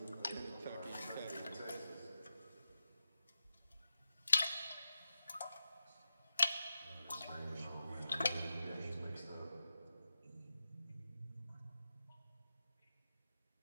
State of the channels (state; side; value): inverted; both; correlation -0.91